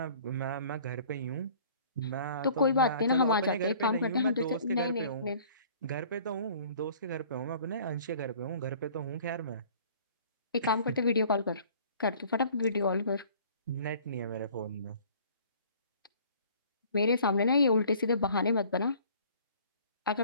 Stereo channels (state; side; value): inverted; both; correlation -0.52